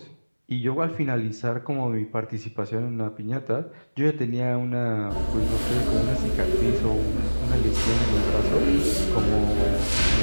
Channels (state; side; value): inverted; both; correlation -1.00